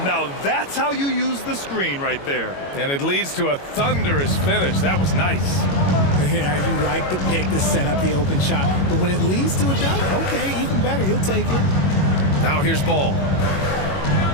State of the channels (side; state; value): right; late; 22 ms